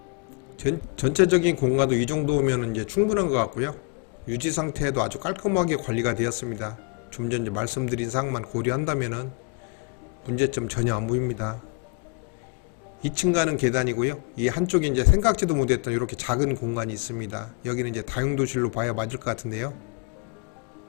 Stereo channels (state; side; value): quieter; right; 32.4 dB